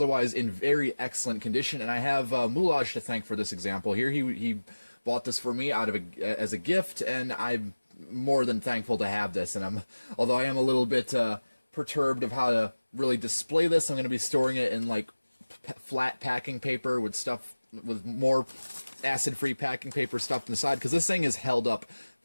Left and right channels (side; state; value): both; inverted; correlation -1.00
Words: in very excellent condition, and I have Mulaj to thank for this example here. He bought this for me as a gift, and I'm more than thankful to have this. And although I am a little bit perturbed of how to really display this, I'm going to be storing it in like flat packing paper with more acid-free packing paper stuffed inside, because this thing is held up